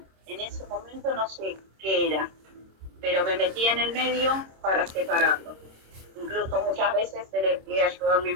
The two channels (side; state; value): left; late; 26 ms